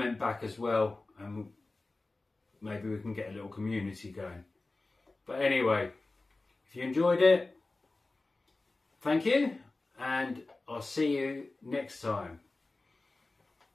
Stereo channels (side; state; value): right; quieter; 3.2 dB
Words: back as well, and maybe we can get a little community going. But anyway, if you enjoyed it, thank you, and I'll see you next time.